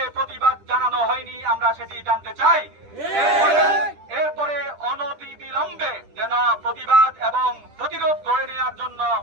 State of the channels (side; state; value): left; late; 10 ms